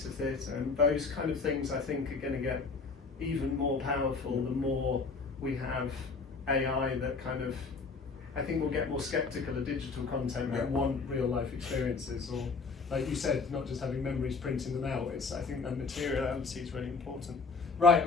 of theatre, and those kind of things I think are going to get even more powerful the more we have AI that kind of, I think we'll get more skeptical of digital content and want real life experiences, or like you said, not just having memories, printing them out. It's, I think that materiality is really important. Right,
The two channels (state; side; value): quieter; right; 4.5 dB